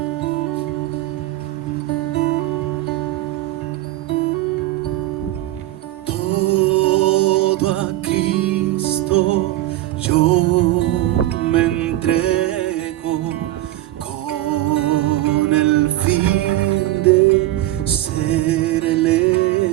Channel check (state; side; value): quieter; left; 15.7 dB